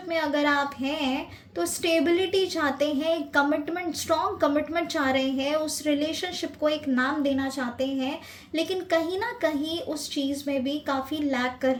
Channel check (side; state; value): both; identical; correlation 1.00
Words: में अगर आप हैं तो स्टेबिलिटी चाहते हैं, एक कमिटमेंट, स्ट्रॉन्ग कमिटमेंट चाह रहे हैं, उस रिलेशनशिप को एक नाम देना चाहते हैं, लेकिन कहीं ना कहीं उस चीज़ में भी काफ़ी लैक कर